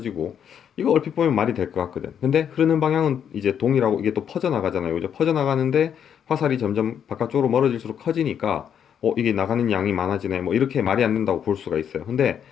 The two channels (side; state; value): right; quieter; 8.5 dB